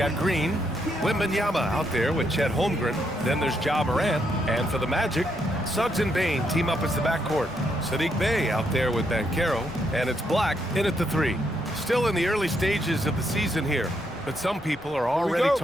Green, Wembanyama out there with Chet Holmgren. Then there's Ja Morant. And for the Magic, Suggs and Bane team up as the backcourt. Sadiq Bey out there with Banchero. And it's Black in at the 3. Still in the early stages of the season here. But some people are already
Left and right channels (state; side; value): normal; both; correlation 0.77